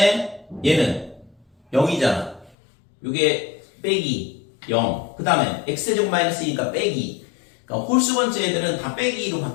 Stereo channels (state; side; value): drops out; right; at 2.6 s